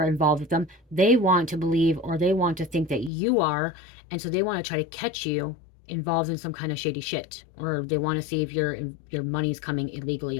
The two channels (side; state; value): right; drops out; at 3.1 s